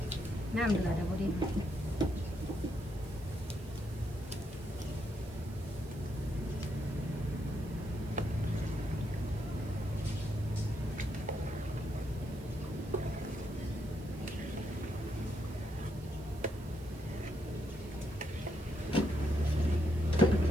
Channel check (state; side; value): noise; right; hiss, 22 dB below the sound